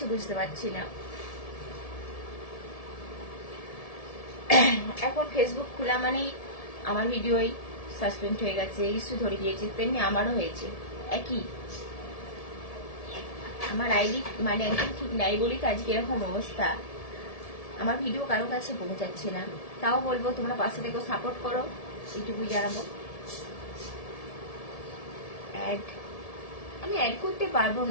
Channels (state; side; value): late; right; 1.7 ms